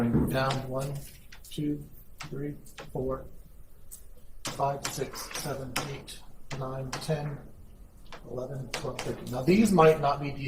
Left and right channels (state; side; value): identical; both; correlation 1.00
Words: down 1, 2, 3, 4, 5, 6, 7, 8, 9, 10, 11, 12, 13. Now these might not be